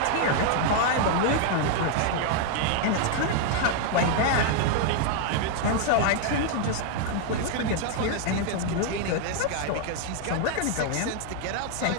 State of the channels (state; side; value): different; both; correlation 0.00